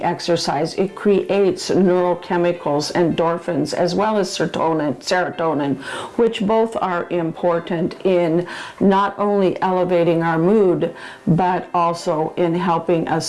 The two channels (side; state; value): both; identical; correlation 1.00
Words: exercise, it creates neurochemicals, endorphins, as well as serotonin, which both are important in not only elevating our mood, but also in helping